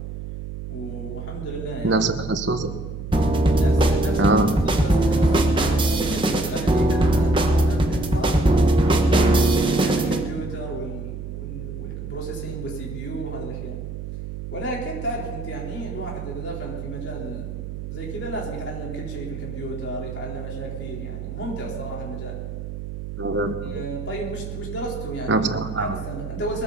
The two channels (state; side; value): noise; right; hum, 8 dB below the sound